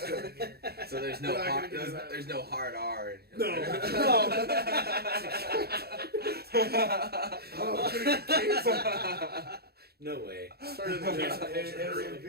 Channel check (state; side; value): late; left; 0.46 ms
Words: here. So there's no hard R. In here. No. No way. Started the it was